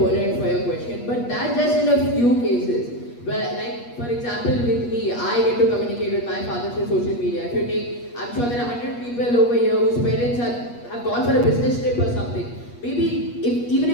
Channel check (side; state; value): right; late; 8.4 ms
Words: for your question, but that's just in a few cases. Well, like, for example, with me, I get to communicate with my father through social media. If you take, I'm sure there are 100 people over here whose parents have gone for a business trip or something. Maybe, even